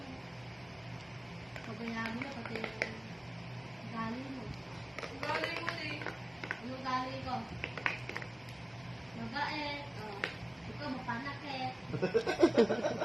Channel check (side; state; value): right; noise; hum, 29 dB below the sound